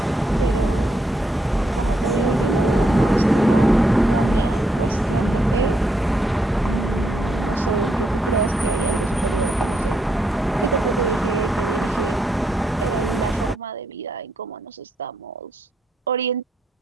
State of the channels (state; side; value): normal; both; correlation 0.78